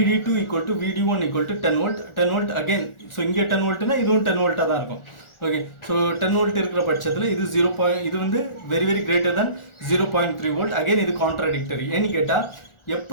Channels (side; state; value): right; late; 1.4 ms